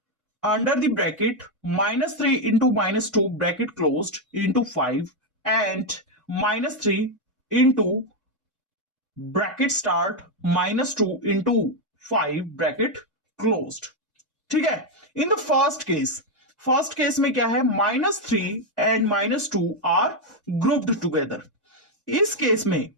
under the bracket -3 into -2 bracket closed into 5 and -3 into bracket start -2 into 5 bracket closed। ठीक है। इन द फर्स्ट केस में क्या है? -3 एंड -2 आर ग्रुप्ड टुगेदर। इस केस में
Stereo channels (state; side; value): normal; both; correlation 0.03